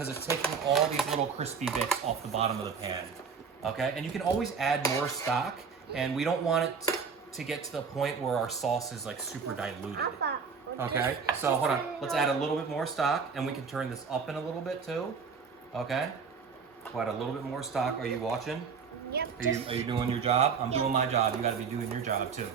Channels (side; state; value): left; quieter; 5.8 dB